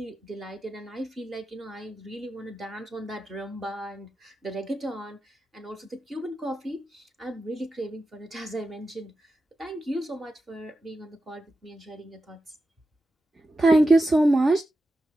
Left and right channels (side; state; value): both; normal; correlation 0.91